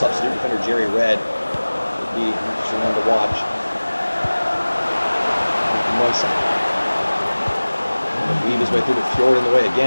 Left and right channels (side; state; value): both; inverted; correlation -1.00